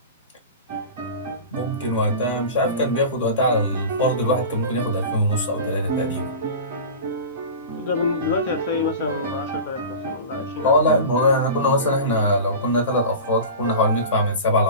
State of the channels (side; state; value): both; inverted; correlation -0.32